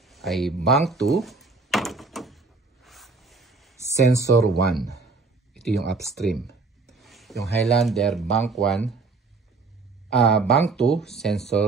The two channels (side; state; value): left; quieter; 4.1 dB